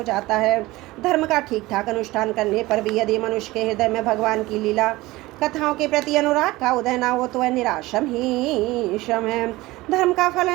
जाता है। धर्म का ठीक ठाक अनुष्ठान करने पर भी यदि मनुष्य के हृदय में भगवान की लीला कथाओं के प्रति अनुराग का उदय न हो तो वह निराशम ही श्रम है। धर्म का फल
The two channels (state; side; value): quieter; left; 19.5 dB